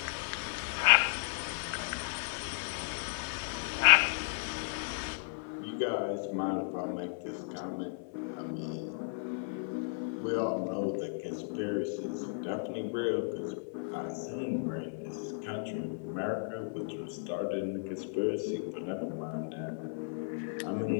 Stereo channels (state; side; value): silent; right; 55 dB below the other